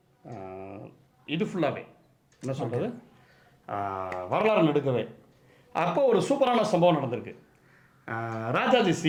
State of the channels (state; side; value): identical; both; correlation 1.00